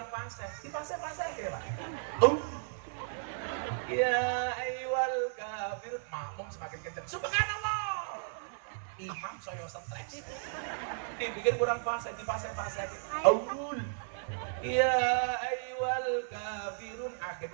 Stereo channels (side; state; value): left; silent; 55 dB below the other